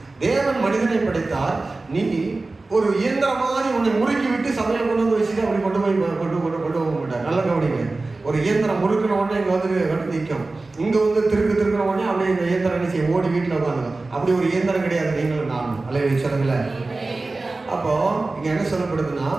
தேவன் மனிதனை படைத்தார், நீ ஒரு இயந்திரம் மாதிரி உன்னை முறுக்கி விட்டு சமையல் கொண்டு வந்து வச்சுட்டு அப்படி கொண்டு போக மாட்டார். நல்ல கவனிங்க. ஒரு இயந்திரம் முறுக்கின உடனே இங்கே வந்து நிற்கும், இங்கே வந்து திருக்கிற உடனே அப்படியே இந்த இயந்திரம் என்ன செய்ய ஓடி வீட்டில் உட்காந்துடும். அப்படி ஒரு இயந்திரம் கிடையாது நீங்களும் நானும். அலையை சொல்லுங்களேன். அப்போ இங்க என்ன சொல்லப்படுதுன்னா,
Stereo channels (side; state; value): left; quieter; 3.4 dB